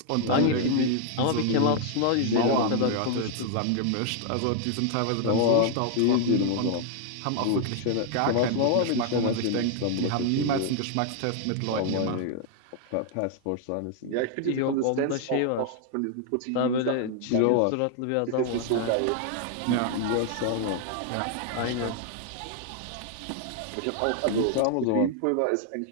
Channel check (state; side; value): different; both; correlation 0.00